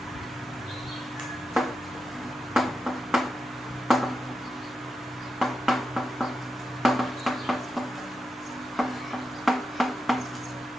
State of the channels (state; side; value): normal; both; correlation 0.88